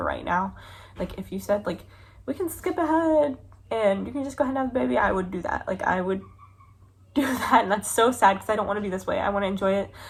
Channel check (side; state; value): both; identical; correlation 1.00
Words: right now. Like, if you said, like, we can skip ahead and you can just go ahead and have the baby, I would do that. Like, I would do that, and that's so sad because I don't want to be this way. I want to enjoy it,